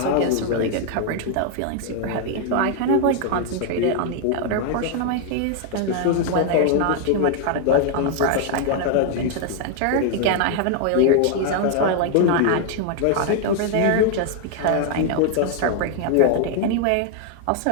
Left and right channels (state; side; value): different; both; correlation 0.00